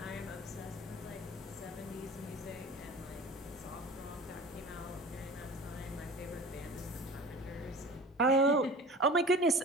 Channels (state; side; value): normal; both; correlation 0.39